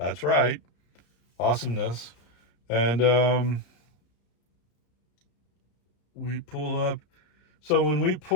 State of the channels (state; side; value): late; right; 34 ms